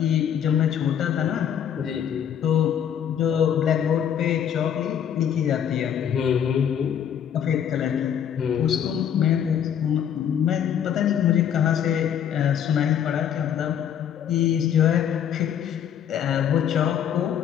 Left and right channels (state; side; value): quieter; right; 9.0 dB